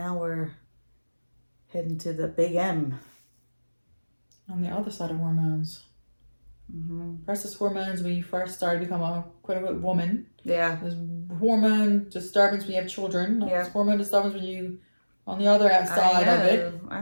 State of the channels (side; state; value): both; inverted; correlation -1.00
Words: we're heading to the big M. On the other side of hormones. Versus hormones when you first start to become a quote-unquote woman. Yeah. There's hormone disturbance when you have children. Yeah. There's hormone disturbance when you on the other side of it. I